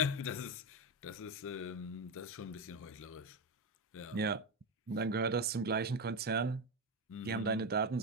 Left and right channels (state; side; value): normal; both; correlation 0.12